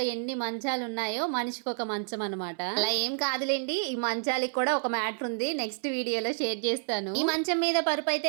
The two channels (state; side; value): silent; left; 58 dB below the other